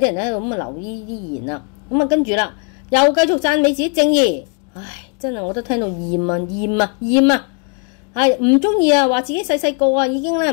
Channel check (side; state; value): right; quieter; 38.1 dB